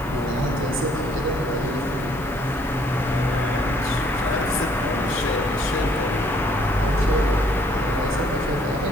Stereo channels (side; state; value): left; noise; hiss, 22 dB below the sound